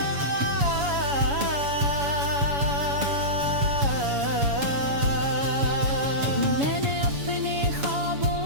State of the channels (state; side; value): late; left; 7.1 ms